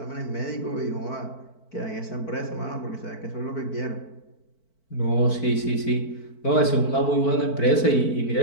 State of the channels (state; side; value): late; right; 4.5 ms